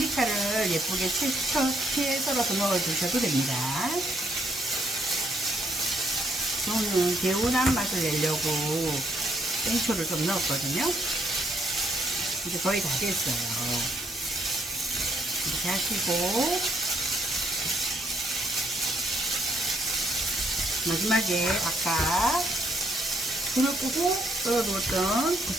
예쁘게 채 썰어서 넣어주셔도 됩니다. 저는 개운한 맛을 내려고 생초를 좀 넣었거든요. 이제 거의 다 됐어요. 이렇게 하시고 마지막에 아까 불을 끄고 썰어두었던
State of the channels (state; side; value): normal; both; correlation 0.71